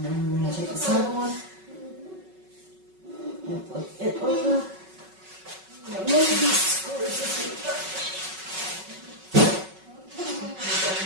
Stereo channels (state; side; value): late; left; 5.3 ms